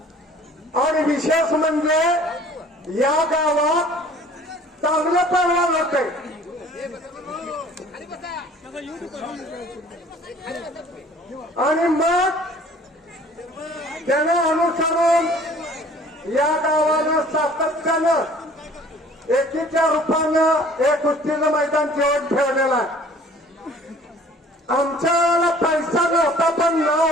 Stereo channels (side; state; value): both; normal; correlation 0.51